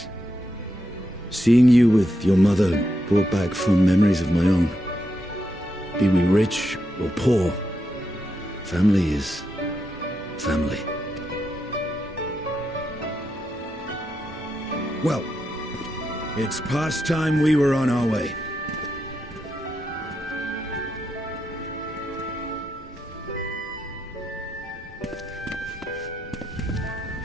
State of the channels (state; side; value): normal; both; correlation 0.84